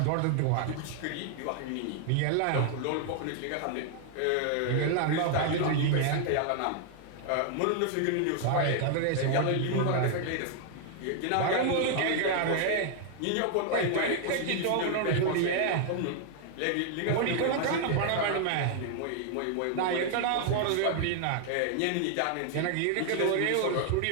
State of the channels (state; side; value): different; both; correlation 0.00